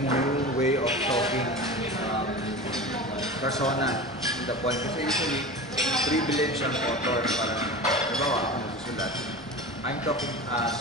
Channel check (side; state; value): both; normal; correlation 0.31